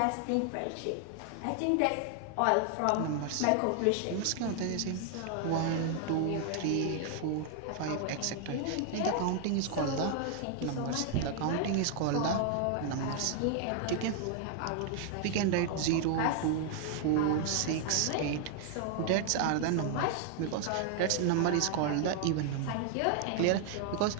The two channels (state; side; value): different; both; correlation 0.00